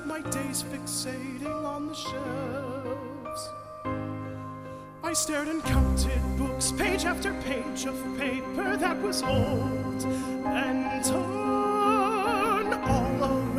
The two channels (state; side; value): identical; both; correlation 1.00